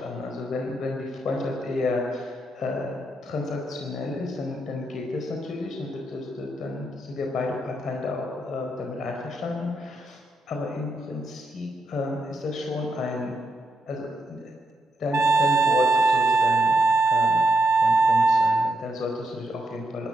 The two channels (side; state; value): both; normal; correlation 0.81